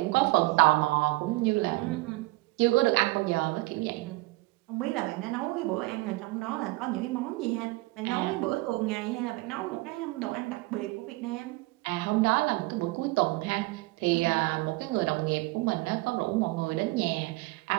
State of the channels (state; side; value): quieter; left; 21.9 dB